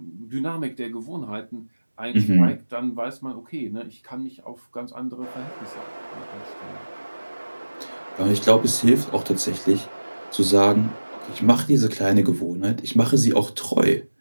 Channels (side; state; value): both; inverted; correlation -1.00